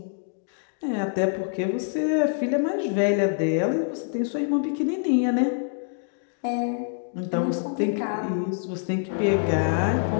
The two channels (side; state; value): right; silent; digital silence